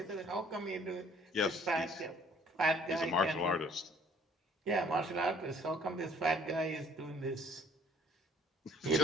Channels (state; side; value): normal; both; correlation 0.58